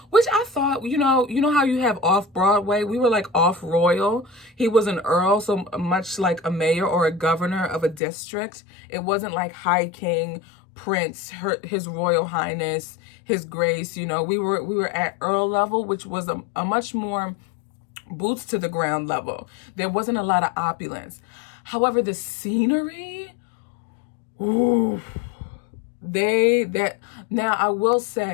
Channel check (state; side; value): drops out; right; at 8.0 s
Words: which I thought, you know how you have off Broadway? We were like off royal. He was an earl, so much like a mayor or a governor of a district. It wasn't like high king, Prince, His Royal Highness, His Grace. You know, we were at Earl level, which was a much more boots to the ground level. There wasn't a lot of opulence. However, the scenery, ooh, now I will